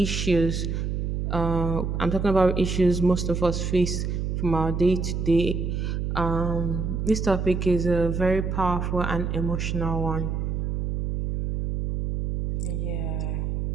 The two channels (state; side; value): noise; right; hum, 1 dB below the sound